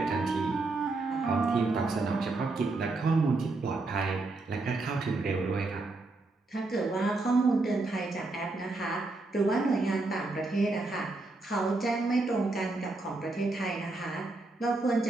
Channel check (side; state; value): left; quieter; 3.2 dB